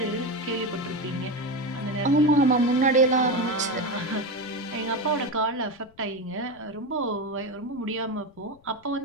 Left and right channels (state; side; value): noise; left; rumble, 28 dB below the sound